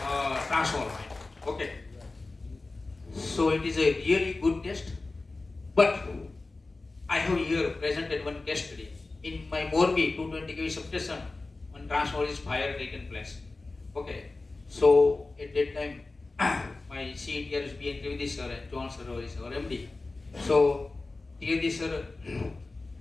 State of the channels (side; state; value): right; quieter; 3.4 dB